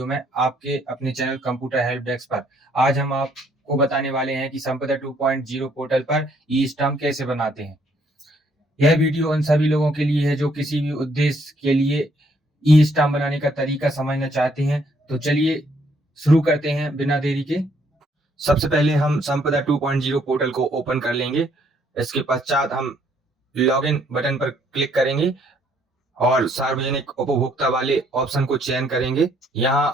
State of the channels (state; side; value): normal; both; correlation 0.67